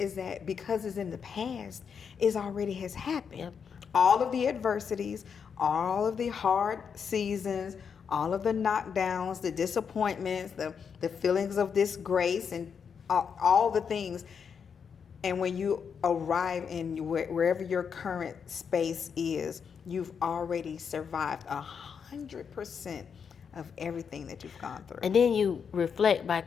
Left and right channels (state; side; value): quieter; right; 6.7 dB